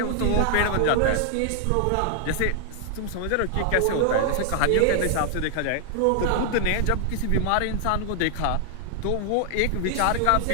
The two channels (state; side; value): different; both; correlation 0.00